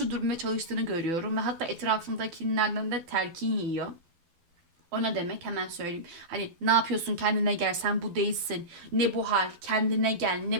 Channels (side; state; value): left; late; 12 ms